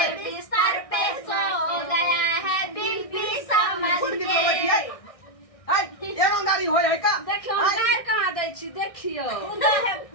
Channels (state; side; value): late; right; 1.6 ms